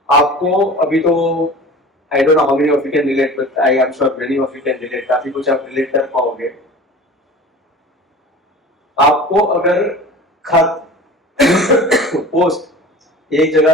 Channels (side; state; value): both; normal; correlation 0.39